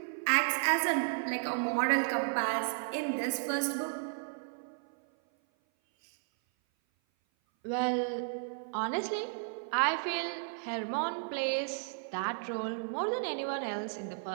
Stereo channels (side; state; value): left; silent; 55 dB below the other